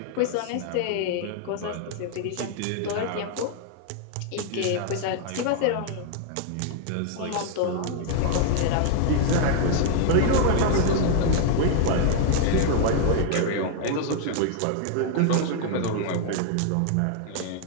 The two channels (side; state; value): both; different; correlation 0.00